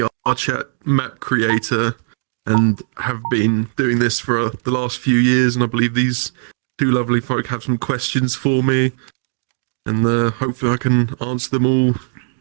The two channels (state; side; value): silent; left; digital silence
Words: map creator, and have been doing this for the last few years. And I believe these two lovely folk have some questions for me, and hopefully I can answer them all